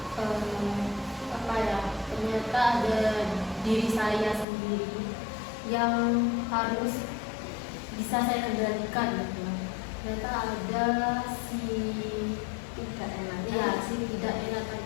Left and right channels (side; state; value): right; drops out; at 4.5 s